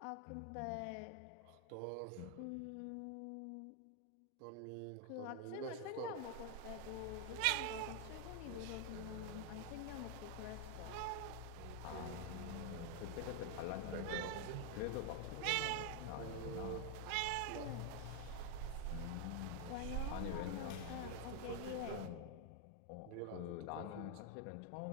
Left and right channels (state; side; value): different; both; correlation 0.00